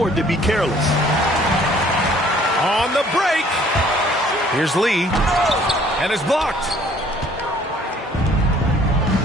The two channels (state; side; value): normal; both; correlation 0.57